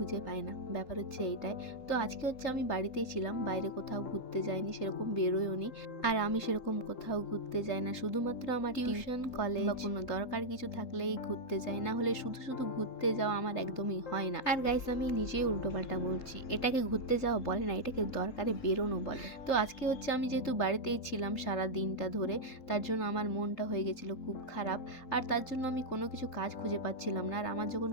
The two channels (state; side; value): late; right; 3.7 ms